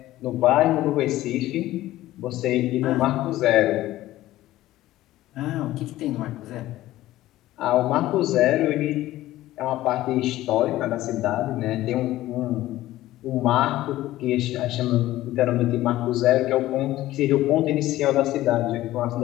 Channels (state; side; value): quieter; right; 15.5 dB